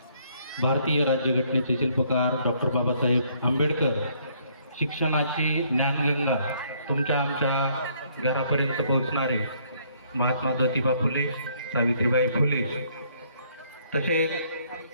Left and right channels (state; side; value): inverted; both; correlation -0.66